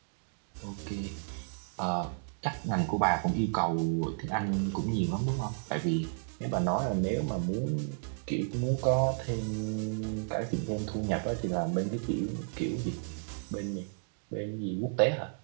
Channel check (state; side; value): silent; left; digital silence